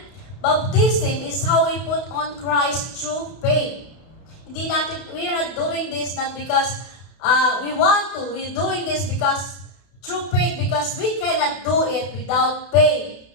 Baptism is how we put on Christ through faith. We are not doing this not because we want to. We're doing this because through faith, because we cannot do it without faith.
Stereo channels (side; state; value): right; late; 32 ms